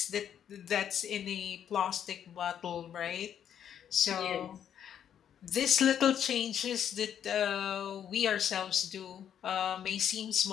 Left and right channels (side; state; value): right; quieter; 9.3 dB